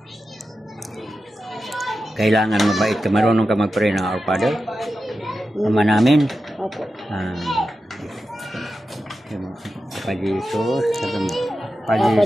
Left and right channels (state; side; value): normal; both; correlation 0.91